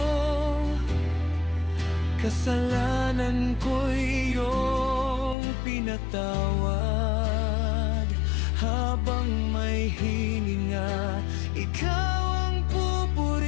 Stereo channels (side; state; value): right; drops out; at 5.4 s